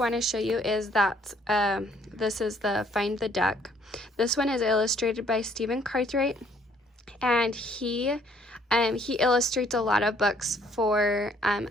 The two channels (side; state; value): both; normal; correlation 0.63